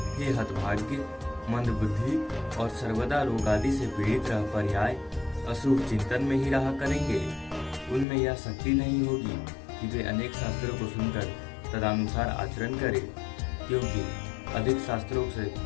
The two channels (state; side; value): drops out; right; at 8.1 s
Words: हे हतभाग्य, मंद बुद्धि और सर्वदा रोग आदि से पीड़ित रह पर्याय अशुभ चिंतन में ही रहा करेंगे। उनमें यह शक्ति नहीं होगी कि वे अनेक शास्त्रों को सुनकर तदनुसार आचरण करें, क्योंकि अधिक शास्त्रों से